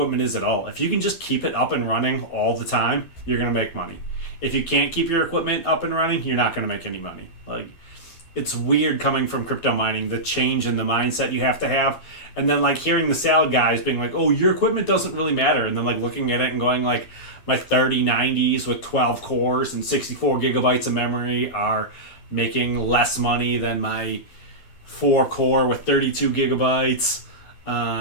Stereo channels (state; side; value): late; right; 12 ms